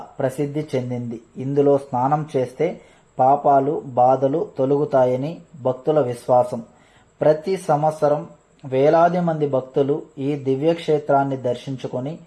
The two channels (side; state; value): both; identical; correlation 1.00